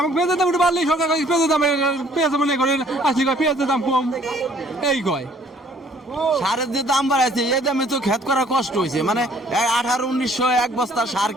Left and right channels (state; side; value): normal; both; correlation 0.59